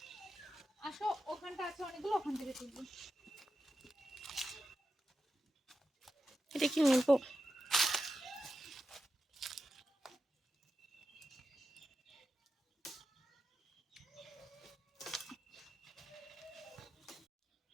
আসো, ওখানটা আছে অনেকগুলো, ওখান থেকে তুলবো। এটা কি নেবো?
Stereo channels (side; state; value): both; normal; correlation 0.90